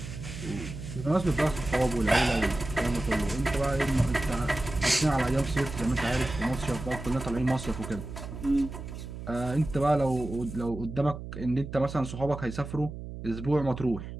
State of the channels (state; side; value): noise; right; hum, 10 dB below the sound